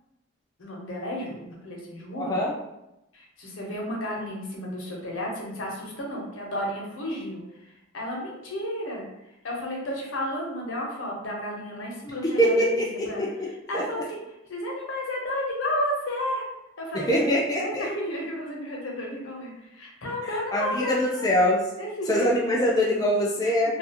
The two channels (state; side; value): normal; both; correlation 0.29